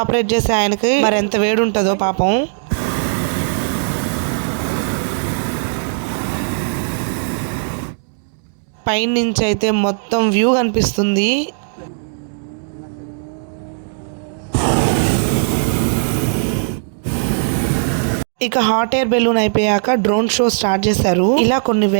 ఆపరేట్ చేసే ఆయనకి మరి ఎంత వేడి ఉంటుందో పాపం. పైన నుంచి అయితే మొత్తం వ్యూ కనిపిస్తుంది. ఇక హాట్ ఎయిర్ బెలూన్ అయిపోయాక డ్రోన్ షో స్టార్ట్ చేశారు. ఇలా కొన్ని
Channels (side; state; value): left; silent; digital silence